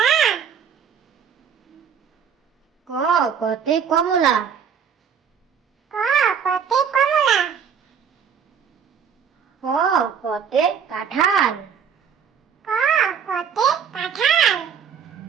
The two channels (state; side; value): quieter; left; 7.3 dB